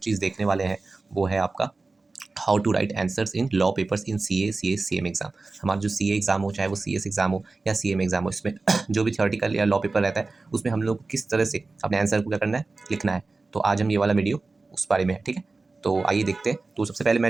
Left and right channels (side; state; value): left; quieter; 3.7 dB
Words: देखने वाले हैं वो है आपका how to write answers in law papers in CA, CS, CM exam. हमारा जो सीए एग्जाम हो, चाहे वो सीएस एग्जाम हो या सीएम एग्जाम हो, इसमें जो भी थ्योरेटिकल या लॉ पेपर रहता है उसमें हम लोग को किस तरह से अपने आंसर को क्या करना है, लिखना है। तो आज हम ये वाला वीडियो उस बारे में है, ठीक है। तो आइए देखते हैं। तो सबसे पहले मैं